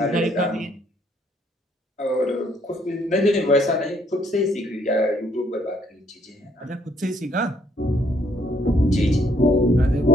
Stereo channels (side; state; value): both; normal; correlation 0.67